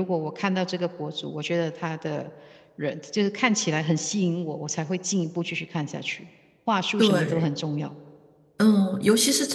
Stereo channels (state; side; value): identical; both; correlation 1.00